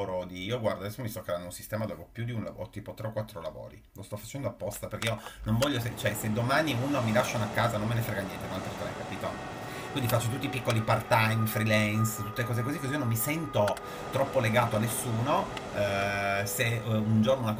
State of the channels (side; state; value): both; identical; correlation 1.00